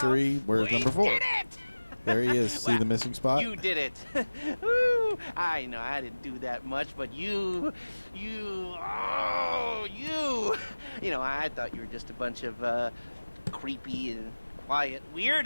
Where's We number 4? did it! There he is. See the missing spot? You did it. Woo. I know I didn't do that much, but you, I thought you were just a bunch of creepy and quiet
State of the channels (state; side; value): inverted; both; correlation -1.00